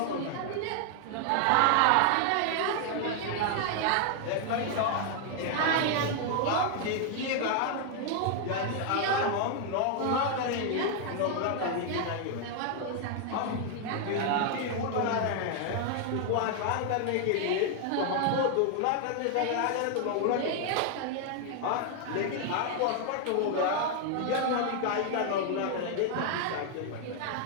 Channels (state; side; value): different; both; correlation 0.00